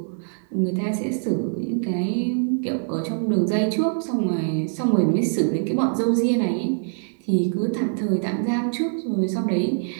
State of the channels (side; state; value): left; silent; digital silence